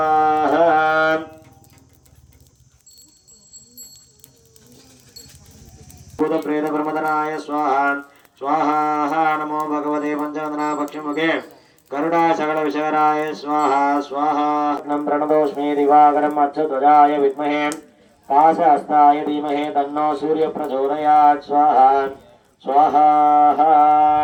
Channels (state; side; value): identical; both; correlation 1.00